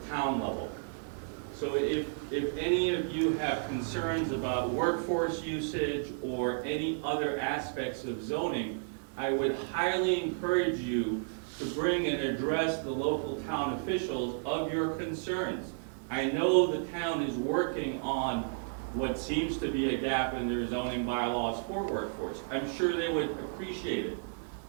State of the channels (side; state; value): left; silent; digital silence